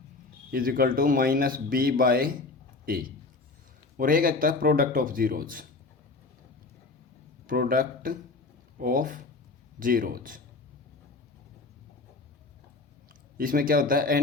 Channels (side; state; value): right; quieter; 3.7 dB